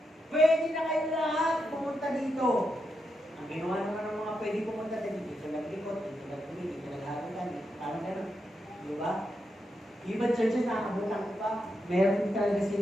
Pwede na kayo lahat pumunta dito. Ang ginawa naman ng mga pwede pumunta dito naglikot, dito nagpili, dito nagharutan, parang gano'n. Di ba? Ibang churches nakabutan ko pa. Meron talaga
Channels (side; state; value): both; normal; correlation 0.84